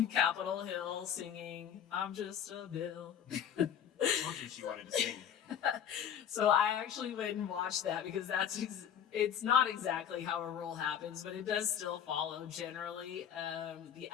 Capitol Hill singing, I'm just a bill. I told you she wanted to sing. So I actually went and watched that because it's not exactly how a rule happens, but it does still follow generally the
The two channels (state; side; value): quieter; right; 9.1 dB